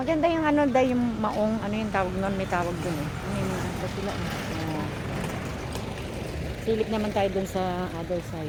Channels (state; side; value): identical; both; correlation 1.00